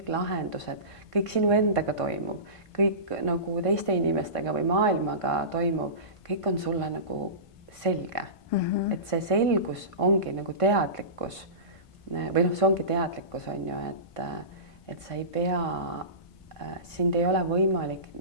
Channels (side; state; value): right; late; 1.5 ms